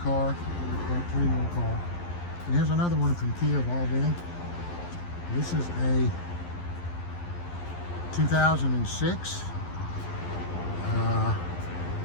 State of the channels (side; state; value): right; late; 11 ms